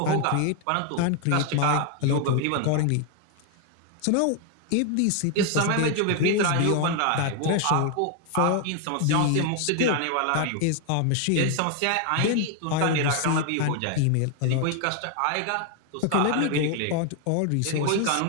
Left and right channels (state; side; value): different; both; correlation 0.01